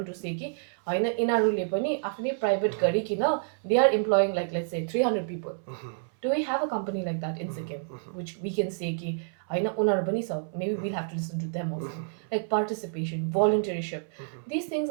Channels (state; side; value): silent; left; 59 dB below the other